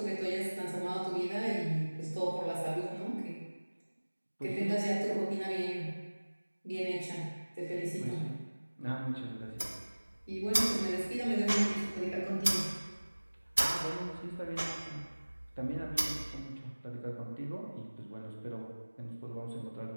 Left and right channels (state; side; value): inverted; both; correlation -1.00